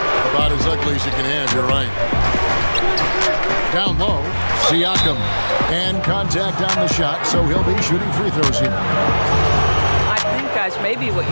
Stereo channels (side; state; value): both; inverted; correlation -1.00